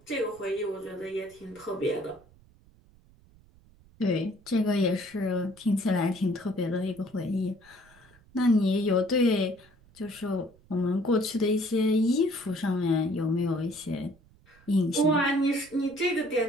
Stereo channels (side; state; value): right; noise; rumble, 28 dB below the sound